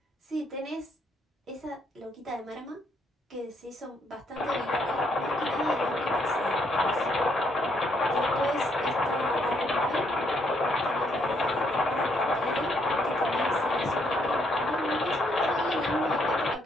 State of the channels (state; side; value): normal; both; correlation 0.72